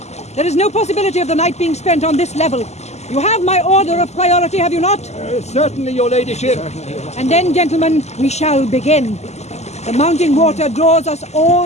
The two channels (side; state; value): right; late; 0.32 ms